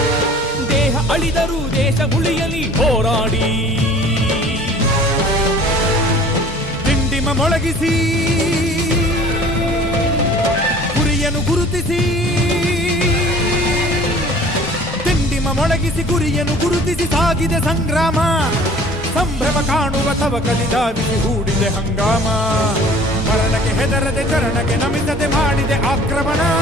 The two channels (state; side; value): normal; both; correlation 0.48